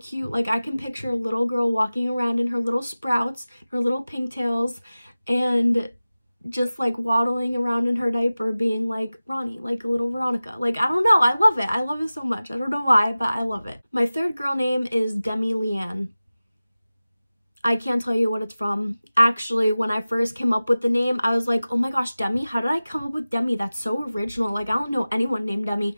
Like I can picture a little girl walking around in her little sprouts, her little pigtails, and just like waddling around in her diaper being like Ronnie, like a little Veronica. Like, I don't know, I love it. I love it so much. I don't know why, but I love it. My third girl name is Demi Leanne. I can't tell you what it's from. Actually, when I first came up with the name, I was like, oh my gosh, Demi, how did I come up with Demi? That's so original. Like, I don't know anyone named Demi.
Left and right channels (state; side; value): inverted; both; correlation -0.97